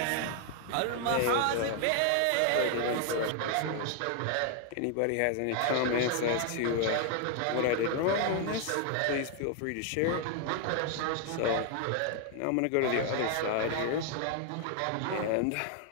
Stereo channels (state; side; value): different; both; correlation 0.00